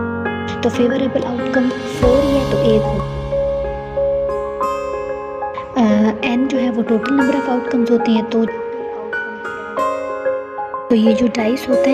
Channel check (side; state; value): both; identical; correlation 1.00